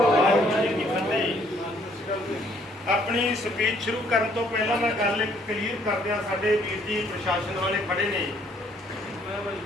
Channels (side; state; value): both; normal; correlation 0.64